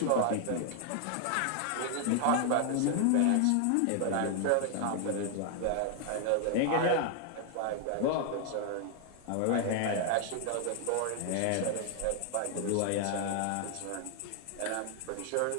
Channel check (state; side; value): different; both; correlation 0.00